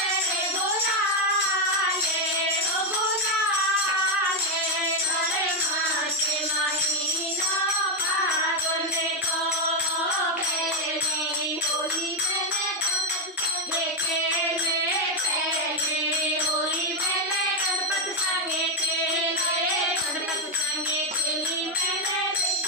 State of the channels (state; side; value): normal; both; correlation 0.05